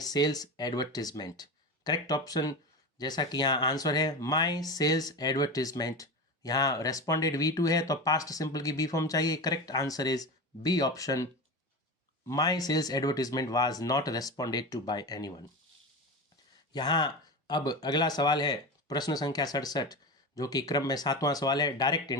sales advertisement. Correct option, जैसा कि यहाँ answer है my sales advertisement, यहाँ responded V2 है तो past simple की B form चाहिए। Correct answer is B option, my sales advertisement was not responded to by anyone. यहाँ अब अगला सवाल है प्रश्न संख्या 67, जो कि क्रम में 7वां सवाल है। डायरेक्ट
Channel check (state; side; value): normal; both; correlation 0.24